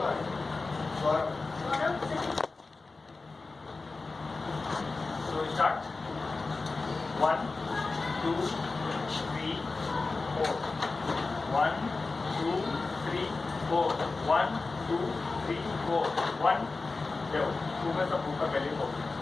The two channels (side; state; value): right; quieter; 3.8 dB